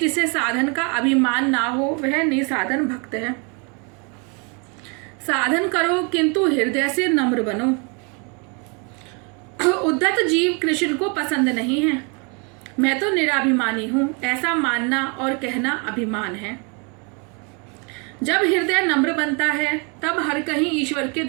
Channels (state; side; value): quieter; left; 34.0 dB